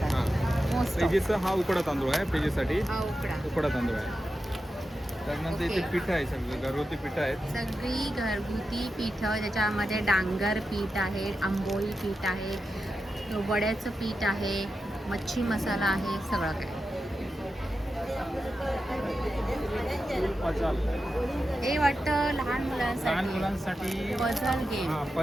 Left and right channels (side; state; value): both; normal; correlation 0.90